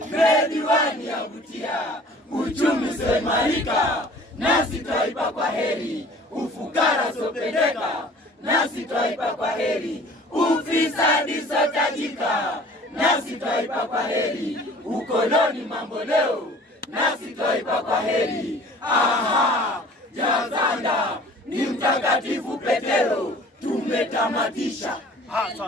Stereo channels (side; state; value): both; normal; correlation 0.48